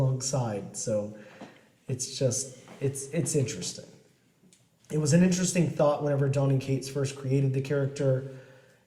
So it's interesting. It was an interesting thought whenever Donny Cates first created the character.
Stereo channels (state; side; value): identical; both; correlation 1.00